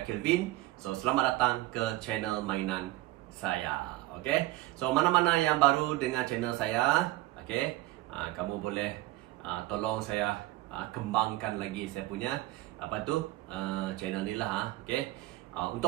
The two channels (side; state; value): left; quieter; 17.9 dB